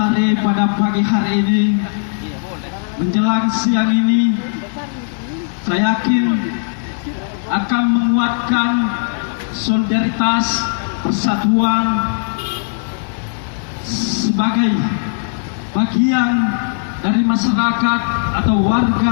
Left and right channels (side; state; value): right; silent; digital silence